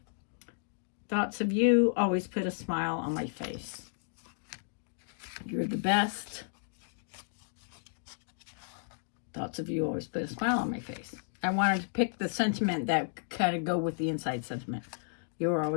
thoughts of you always put a smile on my face. You're the best. Thoughts of you always put a smile on my face. I wanted to pick the sentiment that kind of go with the inside sentiment. You're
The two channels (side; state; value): right; silent; digital silence